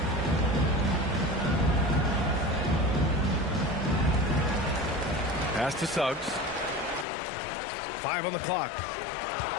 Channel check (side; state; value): right; drops out; at 7.1 s